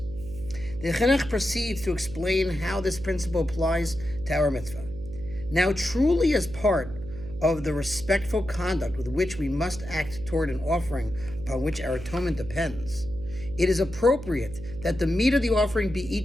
The Chinuch proceeds to explain how this principle applies to our mitzvah. Now, truly as part of the respectful conduct with which we must act toward an offering upon which our atonement depends, it is appropriate that the meat of the offering be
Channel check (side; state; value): right; noise; hum, 12 dB below the sound